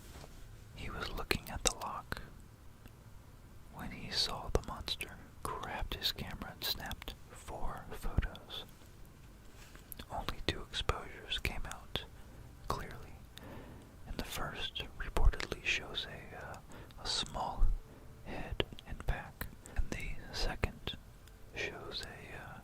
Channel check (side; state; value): both; identical; correlation 1.00